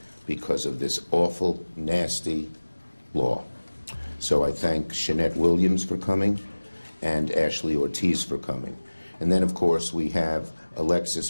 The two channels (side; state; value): both; inverted; correlation -1.00